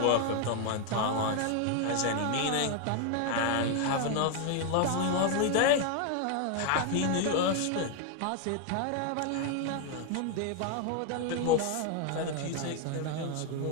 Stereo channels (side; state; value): both; different; correlation 0.01